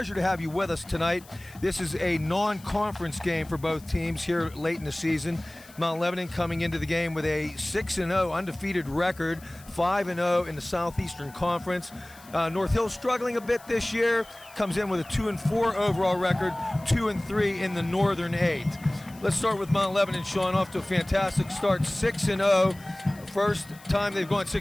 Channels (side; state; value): left; noise; hiss, 23 dB below the sound